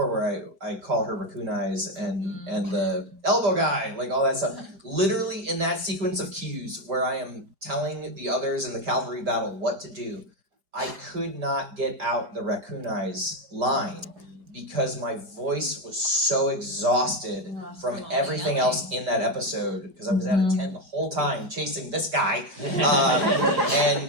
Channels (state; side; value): late; left; 5.1 ms